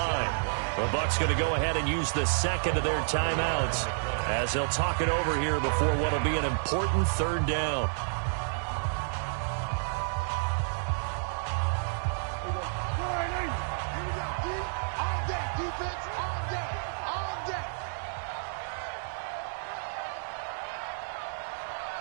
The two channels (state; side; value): silent; left; 58 dB below the other